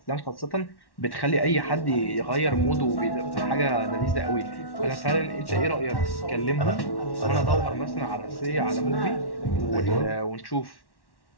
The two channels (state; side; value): late; right; 1.1 ms